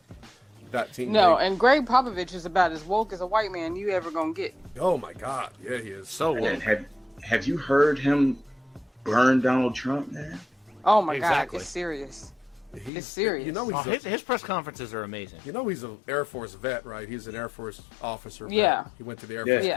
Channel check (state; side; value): drops out; right; at 12.9 s